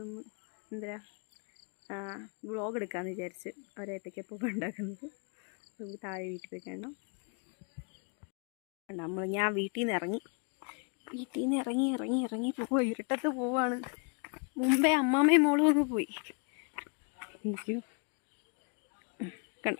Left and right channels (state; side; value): quieter; right; 38.4 dB